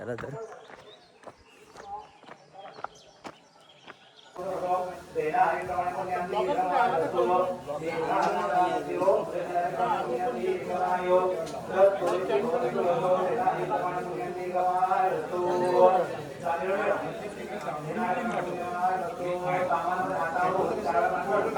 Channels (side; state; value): both; identical; correlation 1.00